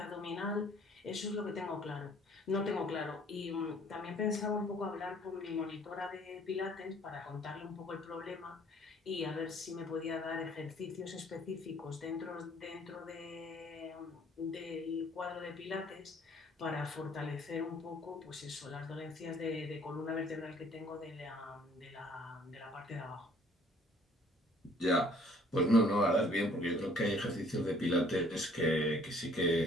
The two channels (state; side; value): normal; both; correlation 0.58